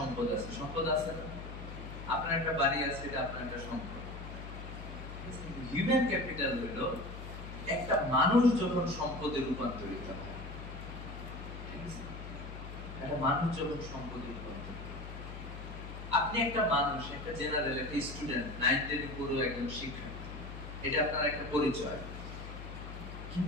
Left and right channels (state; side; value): noise; left; hum, 10 dB below the sound